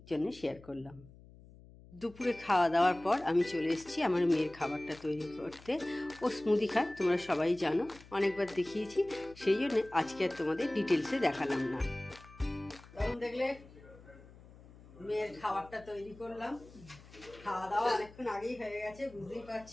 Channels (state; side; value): noise; left; hum, 21 dB below the sound